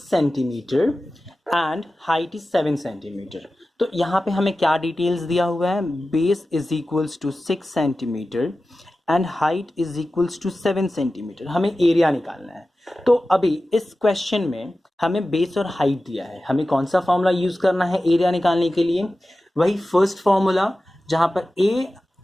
centimetre and height is 7 centimetre. तो यहाँ पे हमें क्या डिटेल्स दिया हुआ है, base is equals to 6 centimetre and height is equals to 7 centimetre. हमें एरिया निकालना है। तो अभी इस क्वेश्चन में हमें बेस और हाइट दिया है, हमें कौन सा फॉर्मूला यूज करना है एरिया निकालने के लिए, वही फर्स्ट फॉर्मूला जहां पर ए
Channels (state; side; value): normal; both; correlation 0.95